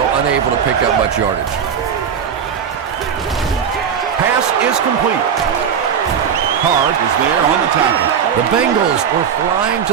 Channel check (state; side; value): quieter; left; 7.6 dB